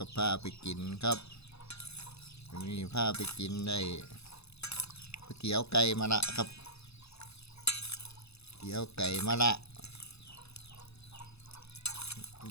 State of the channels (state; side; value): late; right; 0.79 ms